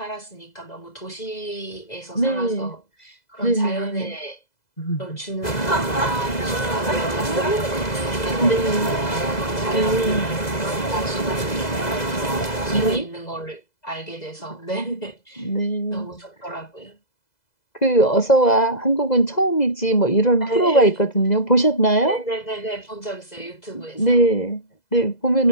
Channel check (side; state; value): right; late; 2.0 ms